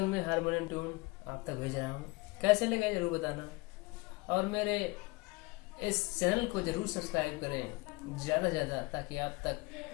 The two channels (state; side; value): quieter; right; 25.1 dB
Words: में हारमोनियम ट्यून आप तक भेज रहा हूँ। कैसे लगे जरूर बताना, और मेरे इस चैनल को जरूर सब्सक्राइब करें ज़्यादा से ज़्यादा, ताकि आप तक